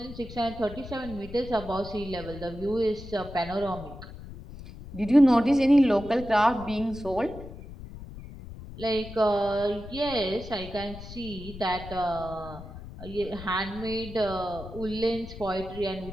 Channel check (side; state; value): left; noise; rumble, 13 dB below the sound